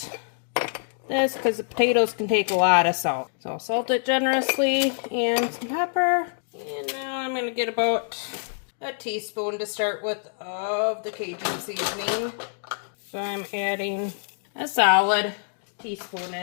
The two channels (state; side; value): silent; right; digital silence